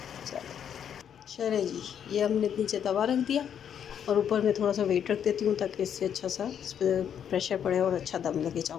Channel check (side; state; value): right; quieter; 8.7 dB